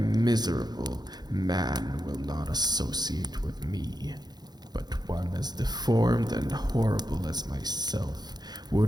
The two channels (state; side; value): late; left; 0.20 ms